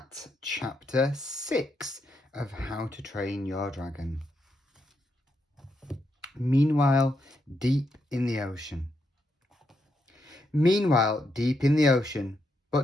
chapter 6 of How to Train Your Dragon. Meanwhile, deep in the ocean. Meanwhile, deep in the ocean,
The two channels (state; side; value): normal; both; correlation 0.81